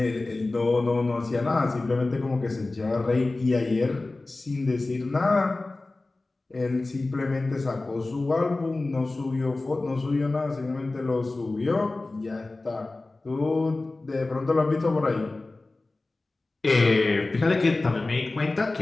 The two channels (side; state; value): right; quieter; 3.2 dB